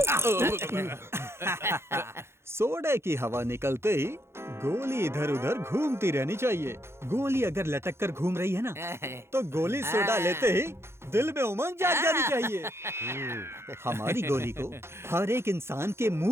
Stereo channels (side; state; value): left; late; 0.12 ms